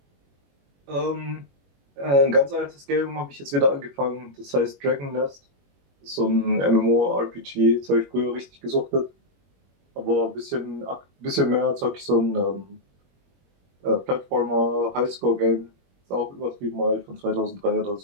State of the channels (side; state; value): left; late; 21 ms